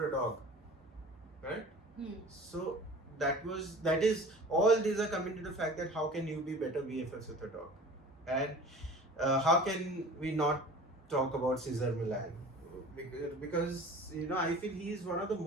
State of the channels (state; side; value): normal; both; correlation 0.41